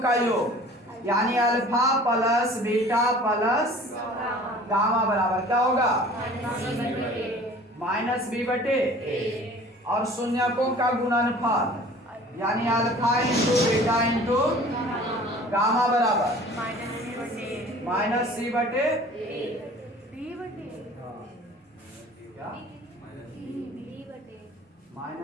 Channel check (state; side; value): normal; both; correlation 0.46